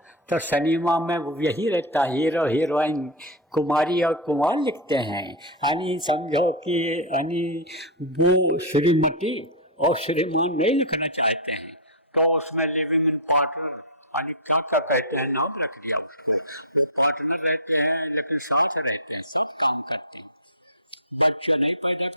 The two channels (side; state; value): both; normal; correlation -0.04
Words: तो सिनेमा में यही रहता, हीरो हीरोइन कुमारी और कुमार लिखते हैं, यानी समझो कि यानी वो श्रीमती और श्रीमान नहीं लिखना चाहते हैं, तो उसमें लिविंग इन पार्टनर यानी क्या क्या कहते हैं, नाम रख दिया उसको। वो पार्टनर रहते हैं लेकिन साथ रहते हैं, सब काम करते हैं, बच्चे नहीं पैदा